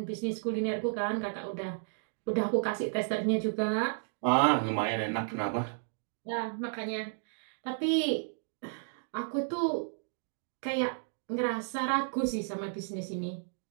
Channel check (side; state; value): left; silent; digital silence